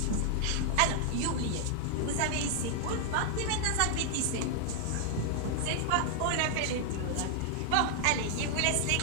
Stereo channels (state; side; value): different; both; correlation 0.00